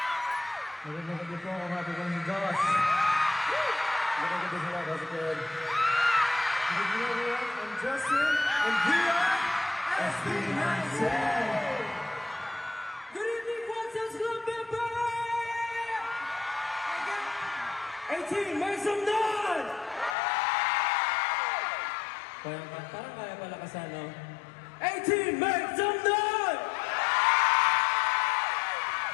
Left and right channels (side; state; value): right; drops out; at 20.2 s